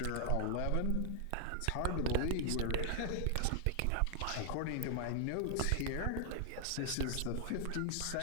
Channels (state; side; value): different; both; correlation 0.00